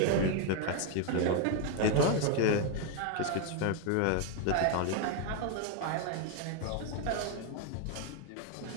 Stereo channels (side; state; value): both; different; correlation 0.01